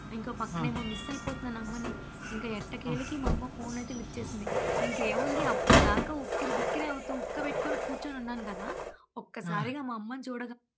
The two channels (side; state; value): both; identical; correlation 1.00